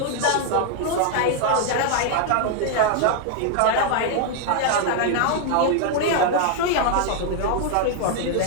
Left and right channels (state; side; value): different; both; correlation 0.00